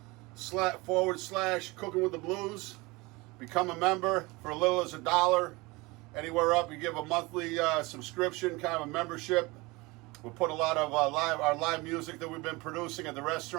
with the Blues. Become a member for as little as $1. Anywhere up, you give a monthly subscription, kind of a membership. We'll put a lot of our live music that we've been producing at the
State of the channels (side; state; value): left; quieter; 23.7 dB